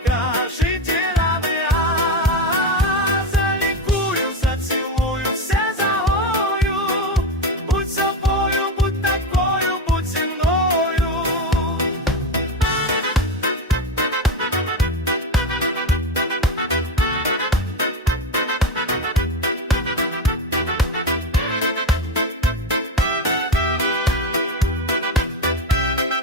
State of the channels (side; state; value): both; normal; correlation 0.18